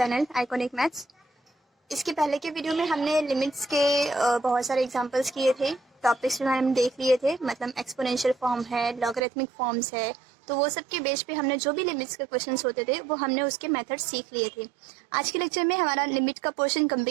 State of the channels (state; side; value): drops out; left; at 9.2 s